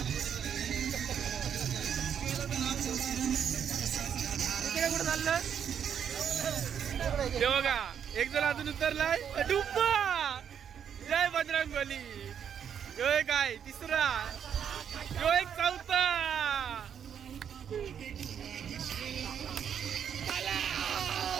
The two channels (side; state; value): left; quieter; 8.3 dB